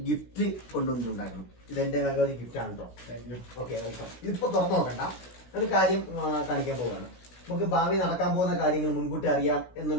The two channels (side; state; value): right; late; 16 ms